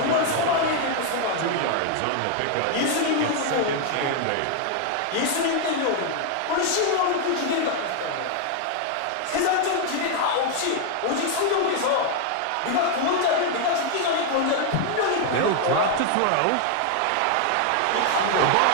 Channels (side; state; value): both; different; correlation 0.00